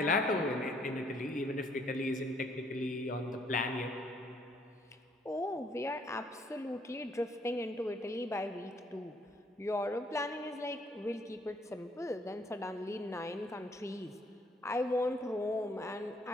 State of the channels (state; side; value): normal; both; correlation 0.66